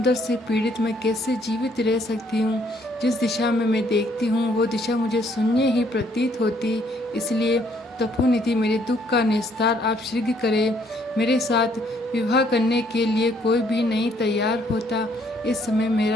से पीड़ित मैं कैसे जीवित रह सकती हूँ? जिस दिशा में मैं देखती हूँ वो दिशा मुझे शून्य ही प्रतीत होती। इसलिए तपोनिधि, मेरे दुख का निस्तार आप शीघ्र करें। मेरे साथ विवाह करने के लिए कोई भी नहीं तैयार होता। इस समय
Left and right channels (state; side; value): normal; both; correlation 0.67